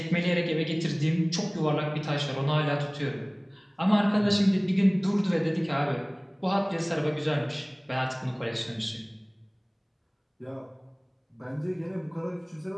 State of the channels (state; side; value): identical; both; correlation 1.00